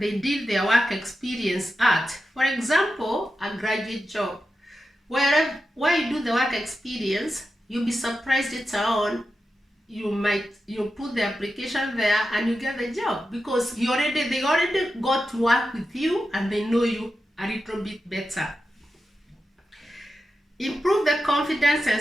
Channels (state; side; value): normal; both; correlation 0.90